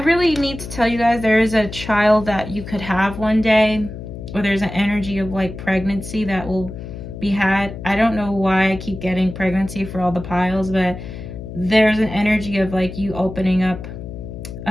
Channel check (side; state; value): left; noise; hum, 10 dB below the sound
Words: need to tell you guys, there is a child that you could have one day, or there's an energy of like pregnancy that will be had. I don't know why I keep getting pregnancy for all the piles, but there's an energy of like you opening up.